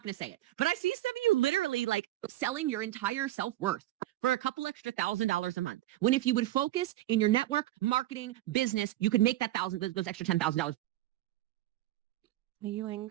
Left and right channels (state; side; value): quieter; left; 15.3 dB